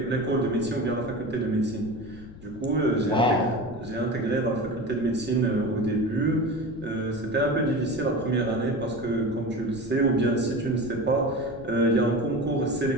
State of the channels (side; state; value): left; noise; rumble, 17 dB below the sound